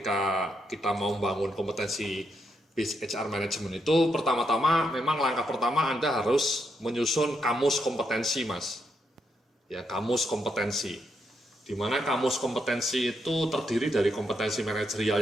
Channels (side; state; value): both; normal; correlation 0.80